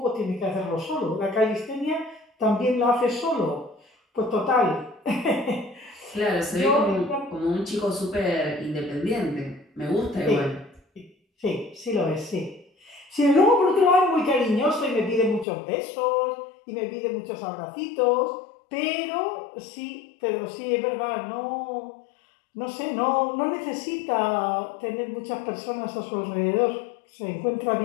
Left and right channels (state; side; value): drops out; right; at 15.5 s